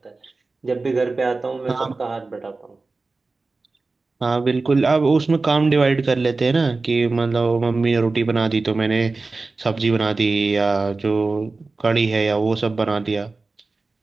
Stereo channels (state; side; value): quieter; left; 3.7 dB